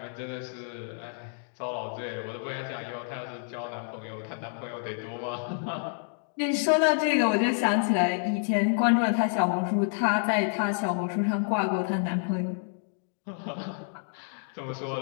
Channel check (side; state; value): right; silent; 59 dB below the other